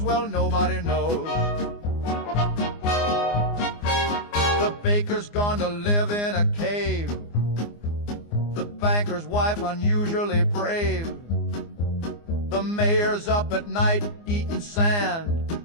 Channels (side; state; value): right; late; 24 ms